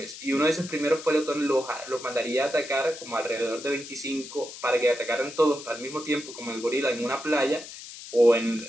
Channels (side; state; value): left; noise; hiss, 13 dB below the sound